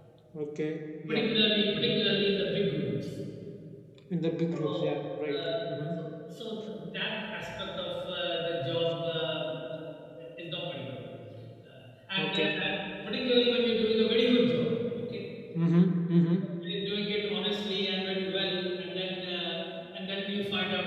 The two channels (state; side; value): identical; both; correlation 1.00